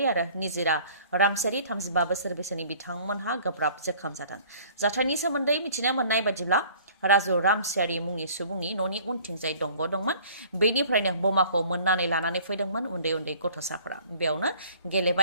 आरो निजिरा रामसारी 35 बोसोर बैसोनि बिथांमोनहा गोब्राब जखम जादों जाथायनि सोमोन्दै मिथिनो मोननाय बायदिब्ला राजु रामसियारि मुंनि सुबुंनि न'नि उनथिंजाय दंग दंमोन बेनिफ्रायनो बमाखौ मोननानै लानानै फैदोंमोन उन्दै उन्दै गथ'साफोरा बेयावनो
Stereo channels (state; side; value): inverted; both; correlation -0.52